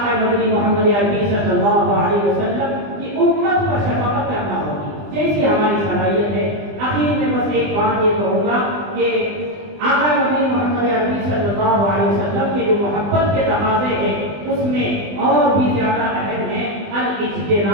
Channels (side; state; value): left; late; 20 ms